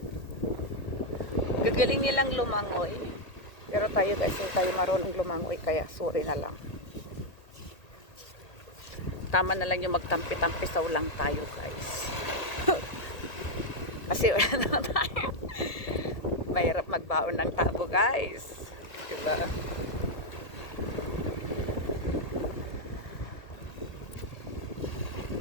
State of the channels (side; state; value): right; late; 1.8 ms